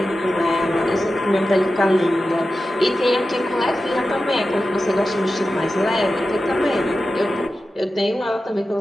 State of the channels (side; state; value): both; normal; correlation 0.93